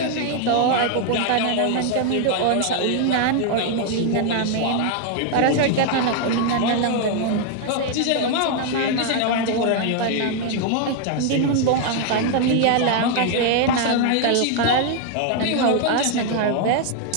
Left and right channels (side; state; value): both; different; correlation 0.00